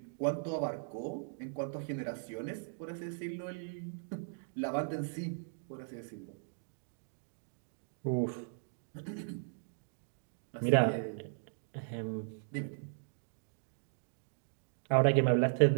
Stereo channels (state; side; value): silent; left; digital silence